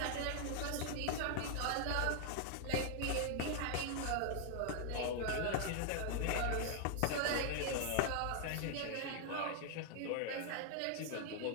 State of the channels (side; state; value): both; different; correlation 0.00